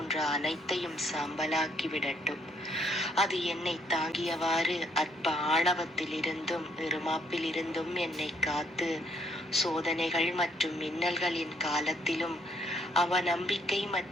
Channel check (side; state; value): both; normal; correlation 0.68